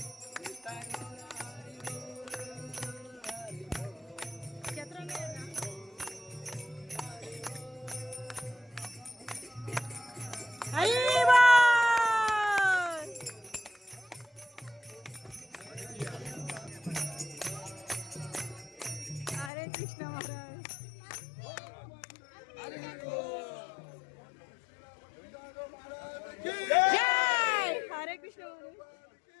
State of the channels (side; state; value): right; drops out; at 19.5 s